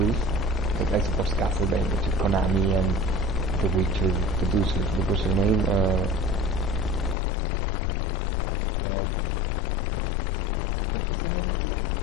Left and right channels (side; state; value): right; drops out; at 7.2 s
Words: like I suppose Castlevania to Konami and the Witcher producers. What was their name? Red. What was the name of the?